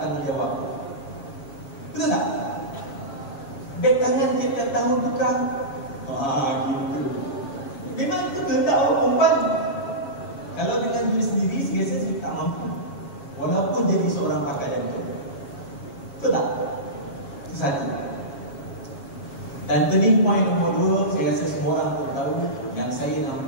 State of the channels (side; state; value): right; late; 7.2 ms